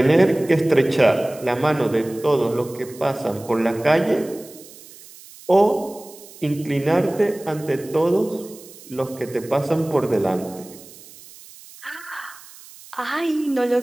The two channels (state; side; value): noise; right; hiss, 20 dB below the sound